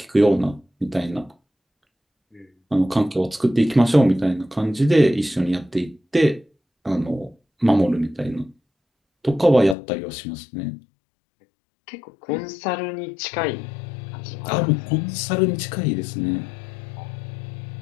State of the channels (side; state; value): right; drops out; at 9.8 s